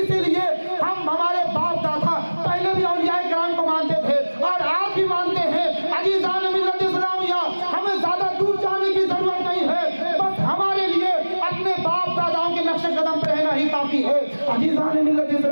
لیے ہم ہمارے باپ دادا پہلے بھی اولیاء کرام کو مانتے تھے اور آج بھی مانتے ہیں. عزیزان ملت اسلامیہ ہمیں زیادہ دور جانے کی ضرورت نہیں ہے, بس ہمارے لیے اپنے باپ داداؤں کے نقش قدم پہ رہنا ہی کافی ہے. عزیزان ملت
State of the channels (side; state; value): both; inverted; correlation -1.00